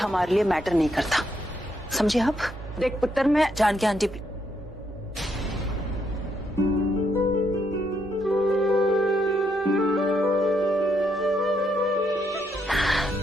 लिए मैटर नहीं करता। समझे आप? देख पुत्र, मैं जानकी आंटी,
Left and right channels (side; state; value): both; normal; correlation 0.76